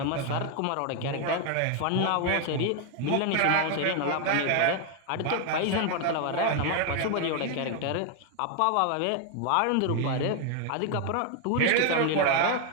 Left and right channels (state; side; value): different; both; correlation 0.00